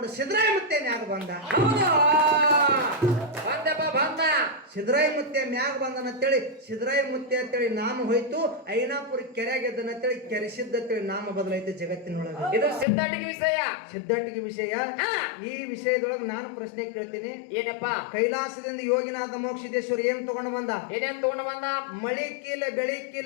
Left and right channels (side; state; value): right; drops out; at 12.9 s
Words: ಸಿದ್ದರಾಯ ಮುತ್ಯ ಮ್ಯಾಗ ಬಂದ. ಸಿದ್ದರಾಯ ಮುತ್ಯ ಮ್ಯಾಗ ಬಂದನ ಅಂತೇಳಿ ಸಿದ್ದರಾಯ ಮುತ್ಯ ಅಂತೇಳಿ ನಾಮ ಹೋಯ್ತು. ಐನಾಪುರ ಕೆರೆಯಾಗೆದ್ದನ ಅಂತೇಳಿ ಕೆರೆಸಿದ್ದ ಅಂತೇಳಿ ನಾಮ ಬದಲಾಯ್ತು ಜಗತ್ತಿನೊಳಗೆ. ಇದು ಸಿದ್ಧಾಟಿಗೆ ವಿಷಯ, ಸಿದ್ಧಾಟಿಗೆ ವಿಷಯ. ಈ ವಿಷಯದೊಳಗೆ ನಾನು ಪ್ರಶ್ನೆ ಕೇಳ್ತೀನಿ, ಏನಪ್ಪ ಕೈಲಾಸದಿಂದ ಯೋಗಿನಾಥ ಮೋಕ್ಷಿದೇಶ್ವರ ಏನ್ ತಗೊಂಡು ಬಂದ? ಏನೇನ್ ತಗೊಂಡು ಬಂದ? ಮಳಿ ಕೀಲ ಬೆಳಿ